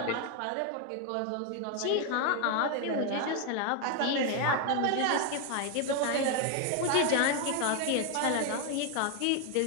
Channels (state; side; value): different; both; correlation 0.01